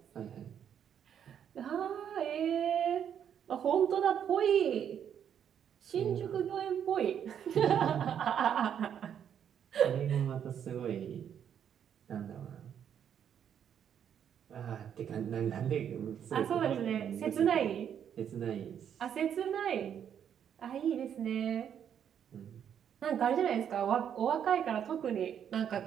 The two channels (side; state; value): left; quieter; 8.8 dB